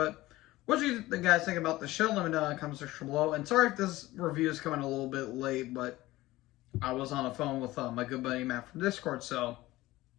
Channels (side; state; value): right; quieter; 17.8 dB